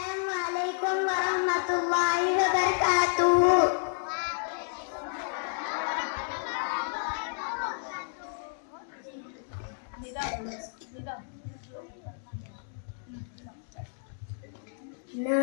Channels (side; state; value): right; silent; digital silence